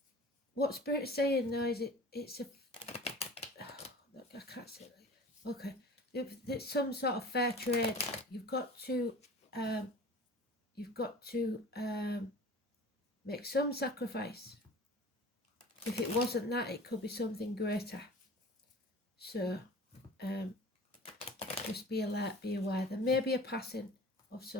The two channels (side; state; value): both; normal; correlation 0.41